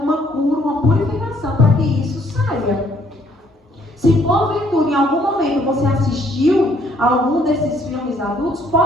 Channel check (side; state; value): both; normal; correlation 0.65